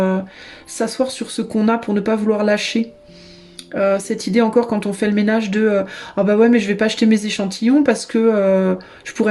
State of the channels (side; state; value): both; identical; correlation 1.00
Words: ce qu'on a pour ne pas vouloir lâcher. Cette idée encore quand on fait le ménage de ah bah ouais mais je vais pas acheter mes échantillons parce que